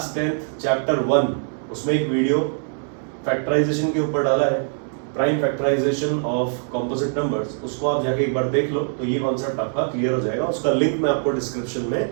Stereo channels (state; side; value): silent; left; 61 dB below the other